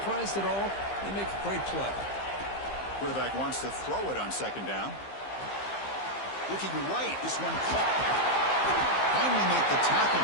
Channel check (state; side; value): late; right; 15 ms